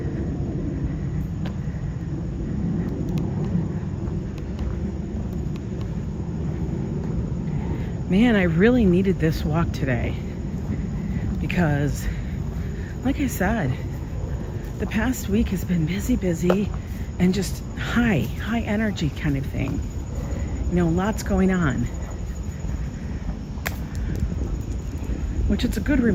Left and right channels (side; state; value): both; identical; correlation 1.00